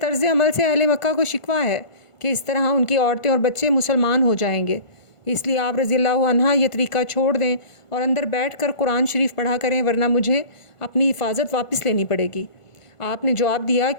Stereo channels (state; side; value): late; right; 1.5 ms